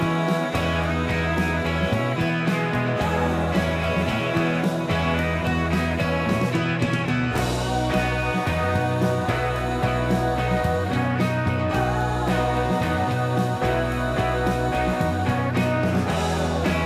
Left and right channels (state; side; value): identical; both; correlation 1.00